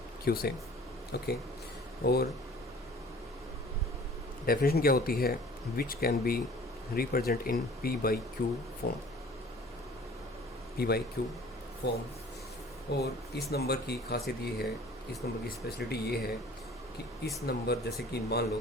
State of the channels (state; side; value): normal; both; correlation 0.49